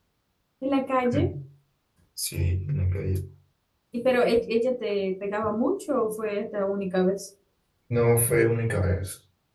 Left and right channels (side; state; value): both; identical; correlation 1.00